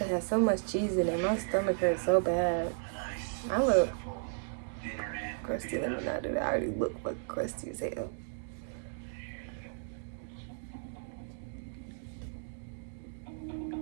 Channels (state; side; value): silent; left; digital silence